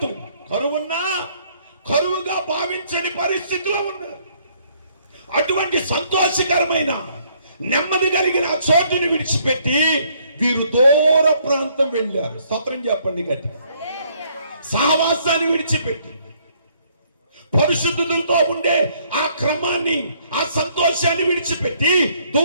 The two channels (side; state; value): both; inverted; correlation -0.66